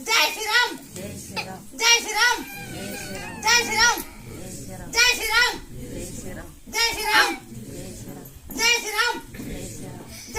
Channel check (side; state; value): both; identical; correlation 1.00